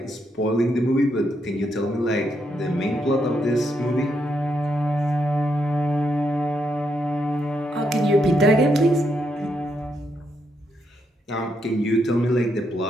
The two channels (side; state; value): both; normal; correlation 0.79